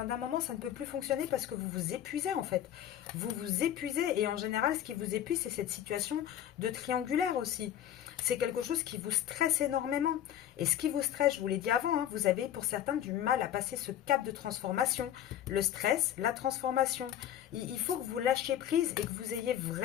moment, ça ne peut plus fonctionner parce que vous vous épuisez, en fait. Vous vous épuisez, et en général, ce qui vous épuise, c'est cette situation de triangulaire aussi. C'est quelque chose qui vous stresse énormément. Et ce qui vous stresse, je vous l'ai dit avant, hein, vous avez pour certains du mal à passer ce cap de transformation. Le stress, la transformation. Il faut que vous lâchiez prise et que vous ayez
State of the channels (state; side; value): quieter; right; 11.2 dB